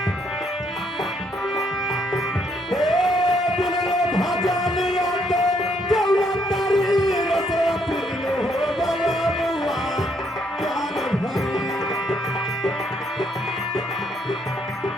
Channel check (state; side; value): normal; both; correlation 0.71